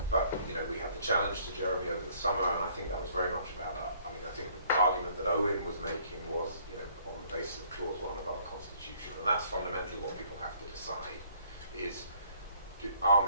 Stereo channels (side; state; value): both; inverted; correlation -0.61